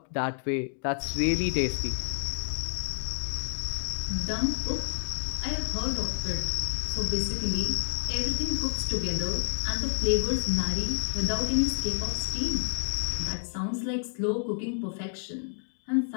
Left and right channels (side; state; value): right; silent; digital silence